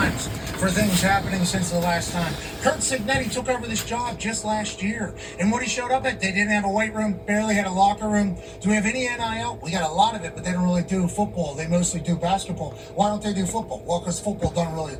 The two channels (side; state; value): both; identical; correlation 1.00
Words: for things happening since the last time. Curt Cignetti took over this job just last year. And when he showed up at, they didn't have a weight room, barely had a locker room. Do we have any NIL? We got a lot of it, but they don't really do football. They mostly do basketball. Why don't they do football? Well, because football doesn't really